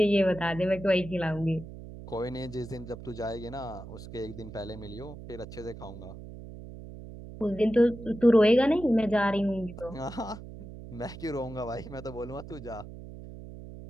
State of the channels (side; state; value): right; noise; hum, 13 dB below the sound